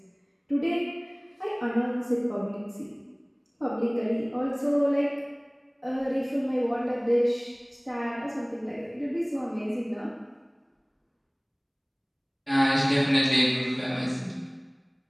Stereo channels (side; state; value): both; identical; correlation 1.00